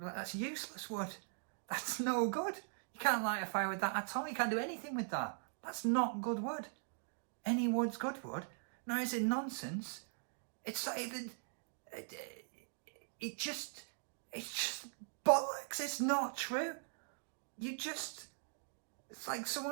that's useless wood. That's no good. You can't light a fire with that at all. You can't do anything with that. That's not good wood. Any wood's good wood. Now, is it nonsense? It's not even... It's just bollocks. It's not true. It's like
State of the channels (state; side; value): silent; left; digital silence